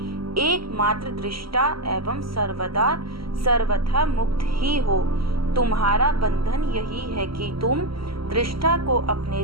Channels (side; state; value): left; late; 0.75 ms